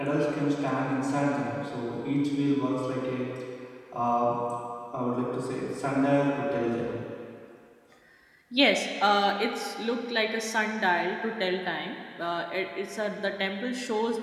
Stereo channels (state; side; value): identical; both; correlation 1.00